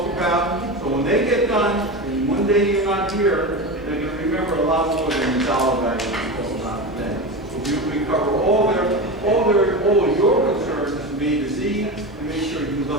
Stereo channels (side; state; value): both; normal; correlation 0.23